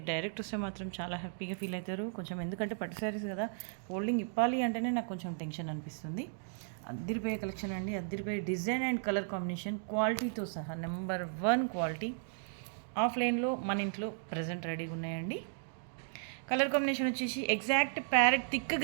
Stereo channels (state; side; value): silent; left; digital silence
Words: డైరెక్ట్ వస్తే మాత్రం చాలా హ్యాపీగా ఫీల్ అవుతారు. కొంచెం ఎందుకంటే పట్టు శారీస్ కదా, ఫోల్డింగ్ ఇప్పాలి అంటేనే నాకు కొంచెం టెన్షన్ అనిపిస్తుంది. అద్దిరిపోయే కలెక్షన్ అండి. అద్దిరిపోయే డిజైన్ అండ్ కలర్ కాంబినేషన్, క్వాలిటీతో సహా నెంబర్ 1 క్వాలిటీ. ఆఫ్లైన్లో మన ఇంట్లో ప్రజెంట్ రెడీగా ఉన్నాయండి. కలర్ కాంబినేషన్ వచ్చేసి ఎగ్జాక్ట్ ప్యారెట్ థిక్